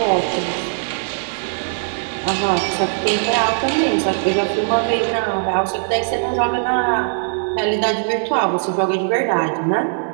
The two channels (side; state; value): left; silent; 60 dB below the other